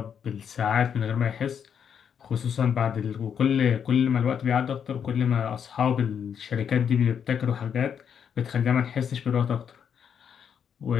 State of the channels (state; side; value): quieter; right; 7.8 dB